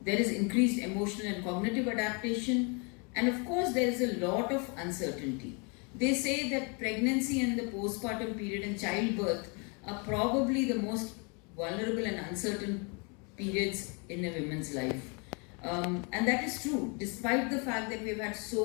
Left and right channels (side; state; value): right; quieter; 33.7 dB